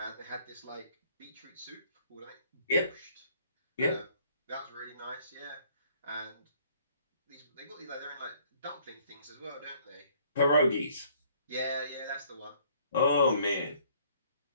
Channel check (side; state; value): both; inverted; correlation -0.60